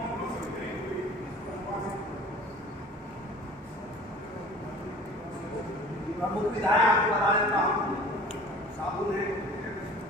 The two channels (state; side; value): normal; both; correlation 0.45